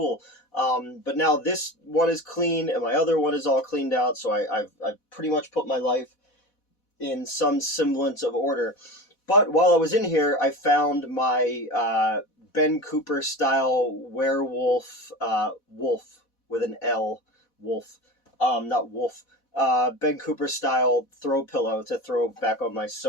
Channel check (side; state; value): right; late; 4.1 ms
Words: But now this one is clean, and my other one is all cleaned out. So I've pretty much put my life in some semblance of order. But while I was in here, I found my Ben Cooper style werewolf, wolf with an L, wolf, not wolf, Ben Cooper style throw pillow to throw back on my